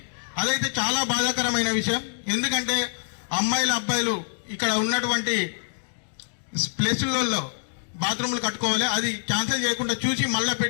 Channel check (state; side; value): silent; right; digital silence